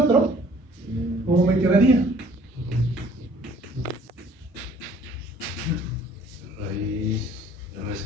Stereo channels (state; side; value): normal; both; correlation 0.55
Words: ¿cómo me quedaría? Raíz